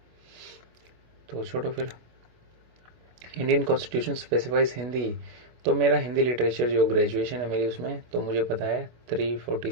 तो छोड़ो फिर। इंडियन कॉन्स्टिट्यूशन स्पेसिफाइज हिंदी, तो मेरा हिंदी लिटरेचर जो ग्रेजुएशन है मेरी, उसमें तो मुझे पता है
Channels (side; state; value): left; late; 24 ms